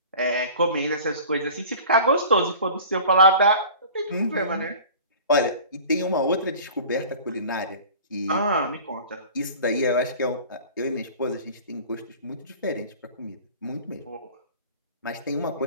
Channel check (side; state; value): both; inverted; correlation -0.42